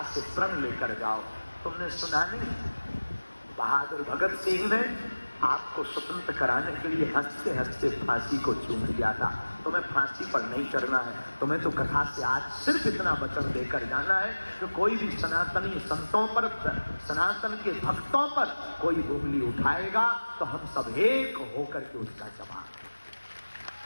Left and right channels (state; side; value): inverted; both; correlation -1.00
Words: से प्रण लेकर जाओ। तुमने सुना नहीं, बहादुर भगत सिंह ने आपको स्वतंत्र कराने के लिए हंसते हंसते फांसी को चूम लिया था। तुम्हें फांसी पर नहीं चढ़ना है, तुम्हें तो कथा से आज सिर्फ इतना वचन देकर जाना है कि कोई भी सनातनी संतों पर, सनातन के भक्तों पर कोई उंगली उठाएगा तो हम सब एक होकर के उसका जवाब,